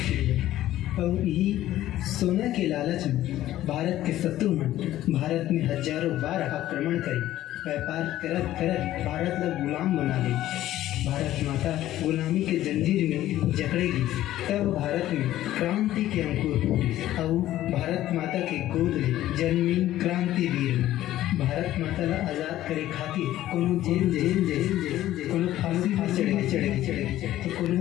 चिड़िया और यही सोना के लालच में भारत के शत्रुमन भारत में हजारों बार आक्रमण करी व्यापार करत करत भारत ला गुलाम बना ली। भारत माता गुलामी के जंजीर में जकड़ेगी तब भारत में क्रांति के अंकुर फूटी और भारत माता के गोद में जन्मी क्रांति वीर भारत माता ला आजाद करे खातिर कोनो जेल कोनो फांसी चढ़े तो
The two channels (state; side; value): quieter; right; 13.9 dB